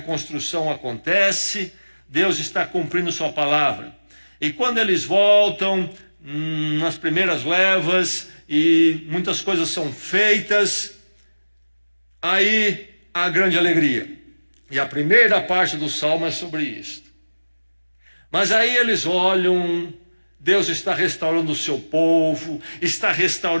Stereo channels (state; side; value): inverted; both; correlation -1.00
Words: acontece, Deus está cumprindo sua palavra. E quando eles voltam, nas primeiras levas, e muitas coisas são feitas, aí há grande alegria. E a primeira parte do salmo é sobre isso. Mas aí eles olham, Deus está restaurando o seu povo, está